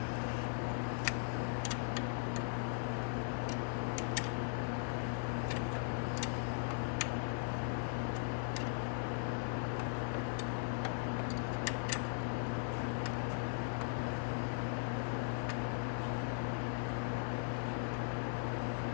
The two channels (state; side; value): silent; right; 52 dB below the other